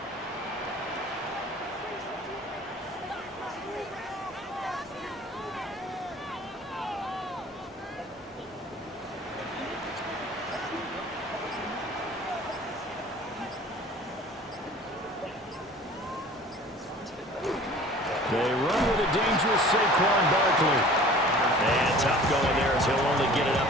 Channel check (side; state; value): both; normal; correlation 0.46